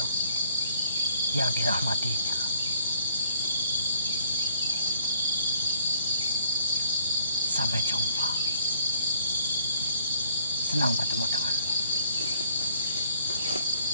yang dirahmatinya. Sampai jumpa. Senang bertemu denganmu.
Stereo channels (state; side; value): inverted; both; correlation -0.60